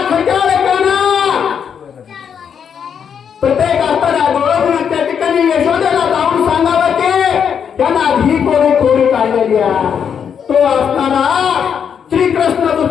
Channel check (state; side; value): quieter; right; 7.5 dB